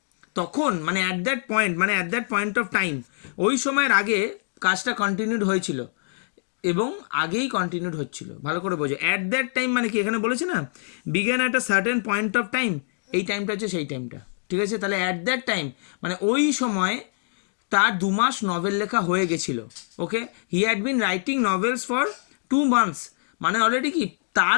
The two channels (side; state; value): right; silent; digital silence